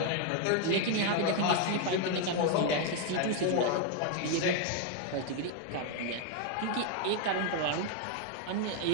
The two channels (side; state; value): both; different; correlation 0.01